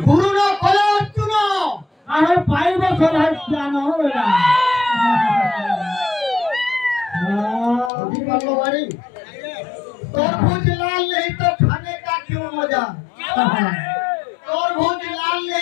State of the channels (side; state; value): right; drops out; at 7.9 s